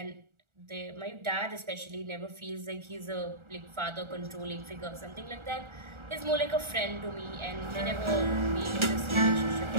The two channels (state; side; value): late; left; 1.4 ms